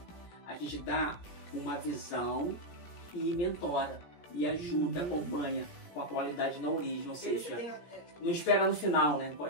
A gente dá uma visão e mentora, e ajuda, acompanha com a qualidade na origem, ou seja, não espera no final, né?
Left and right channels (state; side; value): late; right; 17 ms